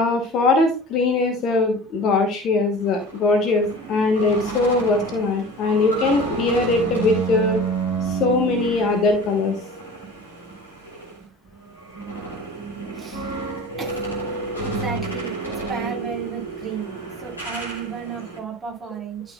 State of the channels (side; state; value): both; normal; correlation 0.39